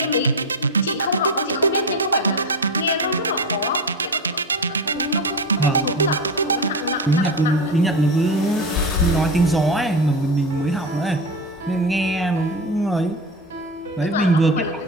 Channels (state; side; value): normal; both; correlation 0.21